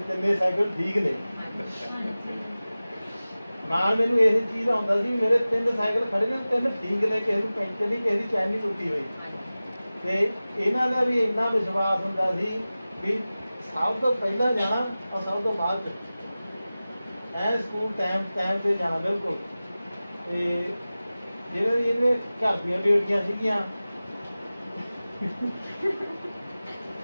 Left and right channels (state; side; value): inverted; both; correlation -0.97